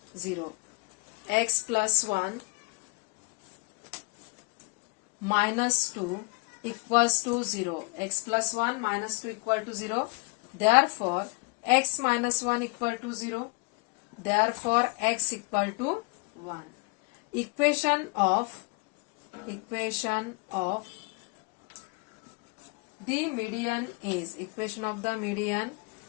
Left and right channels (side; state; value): right; quieter; 30.9 dB